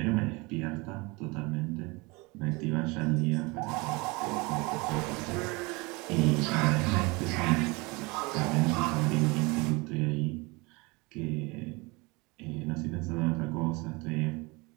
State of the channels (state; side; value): quieter; left; 26.0 dB